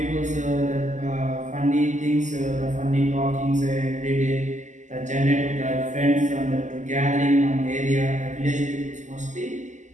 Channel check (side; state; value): left; late; 0.35 ms